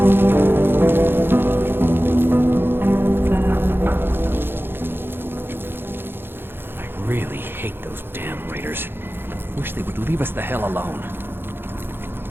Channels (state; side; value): late; left; 0.10 ms